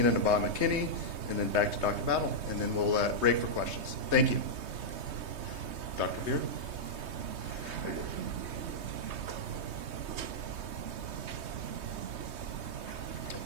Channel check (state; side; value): late; left; 3.2 ms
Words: Nabah McKinney, and then back to Dr. Battle, and then we'll break for questions. Thank you. Dr. Beer.